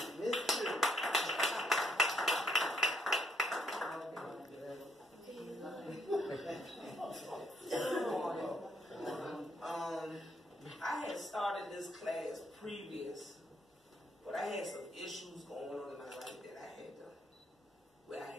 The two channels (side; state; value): both; normal; correlation 0.72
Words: I had started this class previous, but I had some issues going on in my life that I